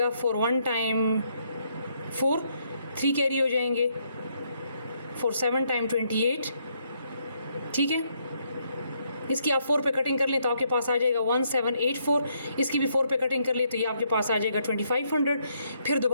4 1 टाइम 4, 3 कैरी हो जाएंगे, 4 7 टाइम 28। ठीक है, इसकी आप 4 पे कटिंग कर लें तो आपके पास आ जाएगा 1784। इसकी भी 4 पे कटिंग कर लें तो ये आपके पास आ जाएगा 2500। फिर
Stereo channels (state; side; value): inverted; both; correlation -0.74